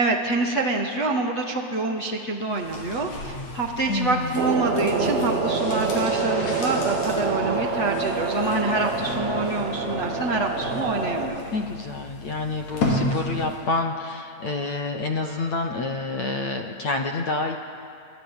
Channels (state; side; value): late; right; 8.6 ms